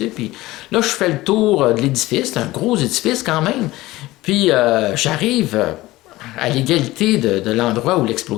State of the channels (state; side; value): quieter; right; 18.2 dB